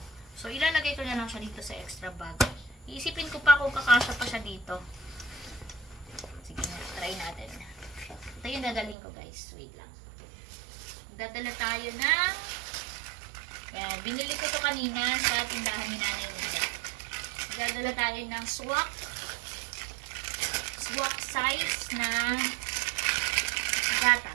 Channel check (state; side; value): drops out; left; at 9.0 s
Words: So, ilalagay ko na lang siya dito sa extra bag. Iisipin ko pa kung kakasya pa siya dito. Sige na, try natin. Ito yung dadalhin ko, guys. Wait lang. Magdadala tayo ng... Kaya, binili ko to kanina sa tindahan ni Nanay Nida. Magdadala tayo ng swak size na